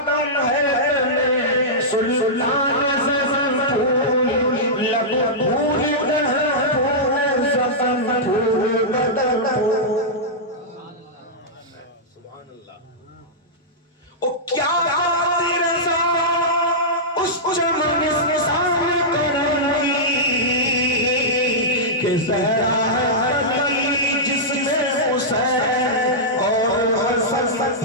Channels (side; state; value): both; normal; correlation -0.12